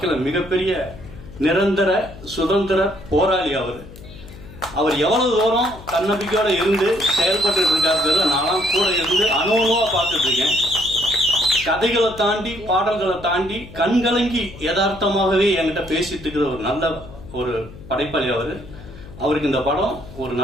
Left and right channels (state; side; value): noise; left; hum, 17 dB below the sound